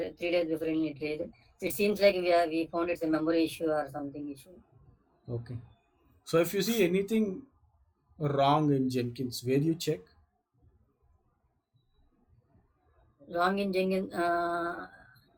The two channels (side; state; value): both; identical; correlation 1.00